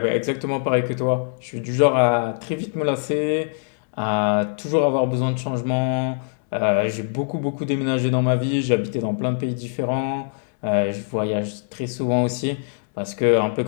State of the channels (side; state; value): right; silent; digital silence